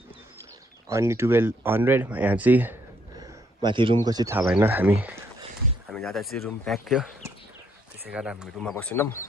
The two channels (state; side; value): normal; both; correlation 0.70